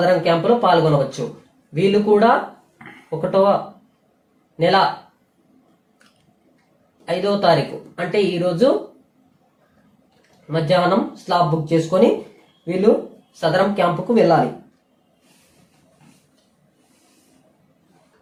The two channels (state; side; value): identical; both; correlation 1.00